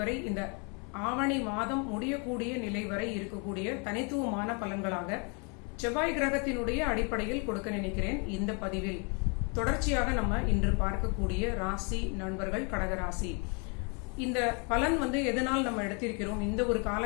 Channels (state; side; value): quieter; right; 35.0 dB